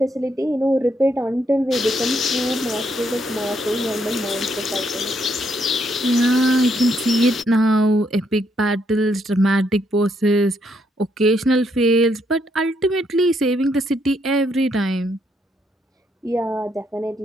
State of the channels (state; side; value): normal; both; correlation 0.74